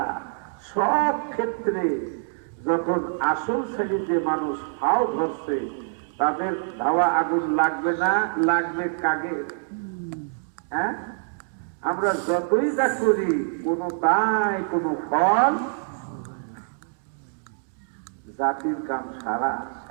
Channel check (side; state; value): left; silent; digital silence